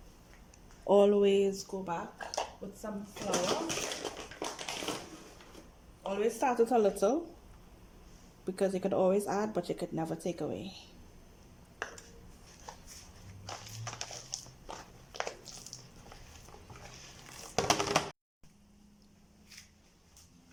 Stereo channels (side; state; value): both; identical; correlation 1.00